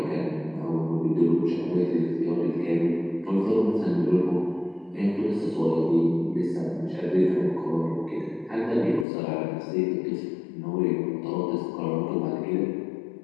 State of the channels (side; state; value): right; drops out; at 9.1 s